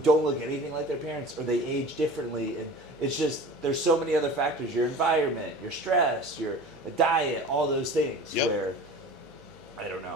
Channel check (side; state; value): right; noise; hum, 28 dB below the sound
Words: look anything like their parents, or they age differently, and it's just there's so many other factors: your environment, your stress, your diet, all those things. Yep. Where I don't